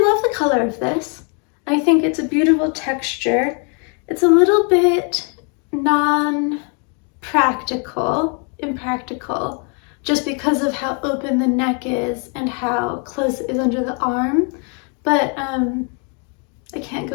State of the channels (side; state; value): right; quieter; 38.2 dB